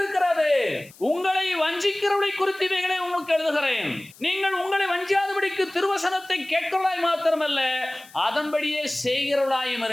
உங்களை வஞ்சிக்கிறவளை குறித்து இவைகளை உங்களுக்கு எழுதுகிறேன். நீங்கள் உங்களை வஞ்சியாதபடிக்கு திருவசனத்தை கேட்கிறவளாய் மாத்திரமல்ல, அதன்படியே செய்கிறவளாயும்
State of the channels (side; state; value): left; noise; hiss, 23 dB below the sound